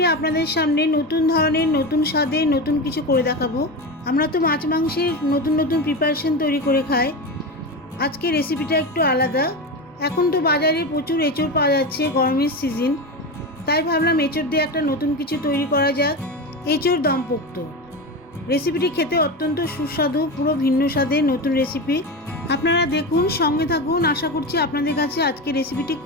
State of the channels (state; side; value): normal; both; correlation 0.21